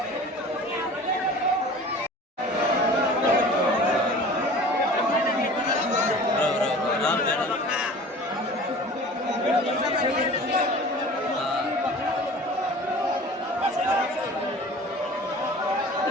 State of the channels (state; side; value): normal; both; correlation 0.42